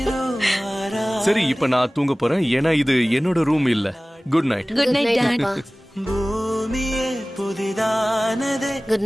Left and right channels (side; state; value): both; normal; correlation 0.98